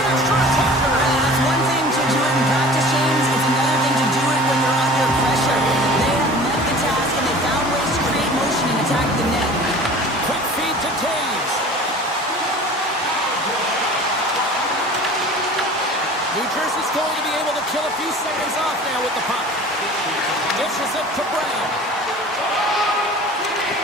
extra attacker. That's one thing to do it in practice, James. It's another thing to do it when you're under pressure. They have met the task, and they found ways to create motion and attack the net. Quick feed to Taves. New Jersey's going to be able to kill a few seconds off now with the puck. Dishes it to Brown.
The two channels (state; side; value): normal; both; correlation 0.42